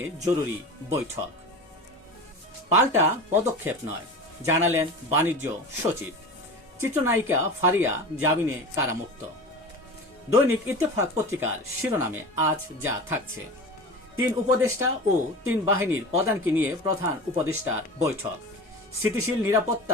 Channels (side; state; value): both; normal; correlation 0.31